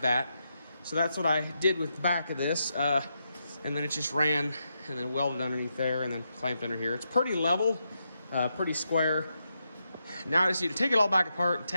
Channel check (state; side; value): inverted; both; correlation -0.84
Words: that. So that's what I did with the back of this. And then it just ran and then welded underneath there and then clamped under here. It's pretty level, pretty square. Now I just need to take it all back apart and